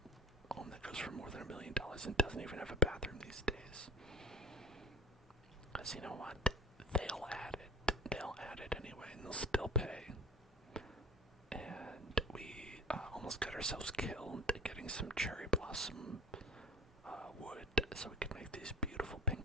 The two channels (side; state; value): both; normal; correlation 0.38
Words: home that goes for more than $1 million and doesn't even have a bathroom these days. Because you know what? They'll add it anyway, and they'll still pay. And we almost got ourselves killed getting some cherry blossom wood so we could make these beautiful